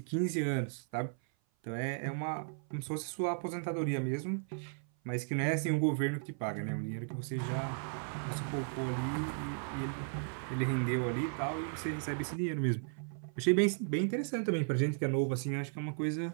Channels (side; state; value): left; silent; 54 dB below the other